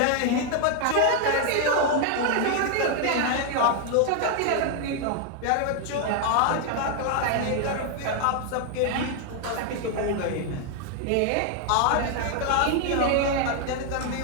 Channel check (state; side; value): different; both; correlation 0.00